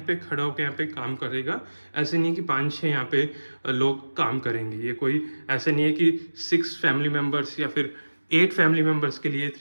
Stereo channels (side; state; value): both; inverted; correlation -1.00